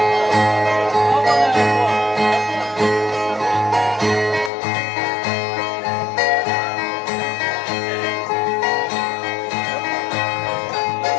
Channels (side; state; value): right; drops out; at 4.5 s